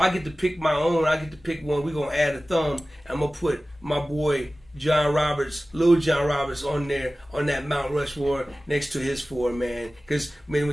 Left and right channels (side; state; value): both; normal; correlation 0.96